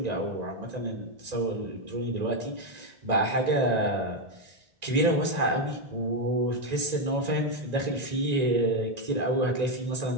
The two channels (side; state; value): left; late; 1.9 ms